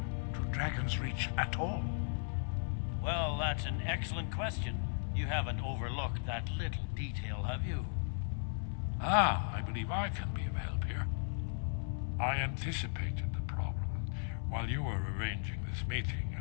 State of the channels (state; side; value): silent; right; 54 dB below the other